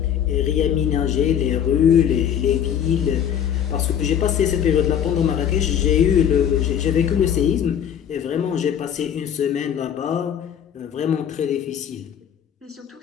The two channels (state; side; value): quieter; right; 9.1 dB